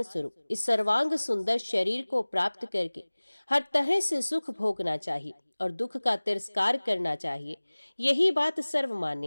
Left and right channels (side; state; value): both; inverted; correlation -1.00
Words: स्वरूप इस सर्वांग सुंदर शरीर को प्राप्त करके हर तरह से सुख भोगना चाहिए और दुख का तिरस्कार करना चाहिए। यही बात